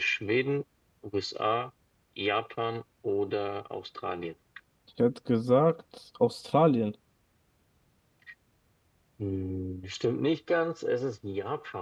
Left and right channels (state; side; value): identical; both; correlation 1.00